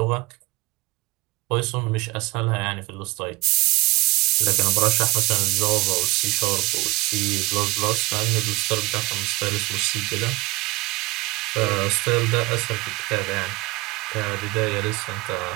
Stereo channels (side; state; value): left; quieter; 21.5 dB